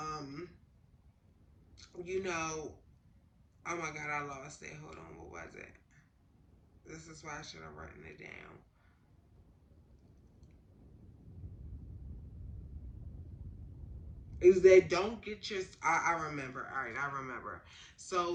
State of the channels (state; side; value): identical; both; correlation 1.00